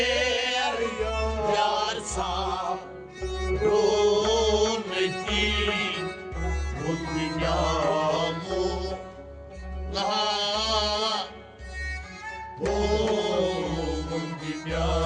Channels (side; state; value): both; identical; correlation 1.00